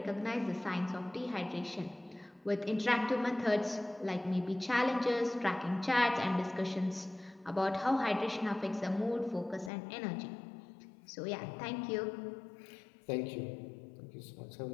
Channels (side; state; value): right; drops out; at 9.7 s